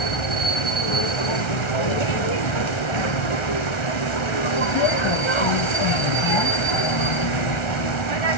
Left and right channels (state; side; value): late; right; 1.4 ms